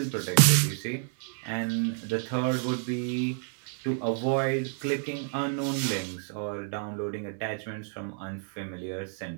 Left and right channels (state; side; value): silent; left; 58 dB below the other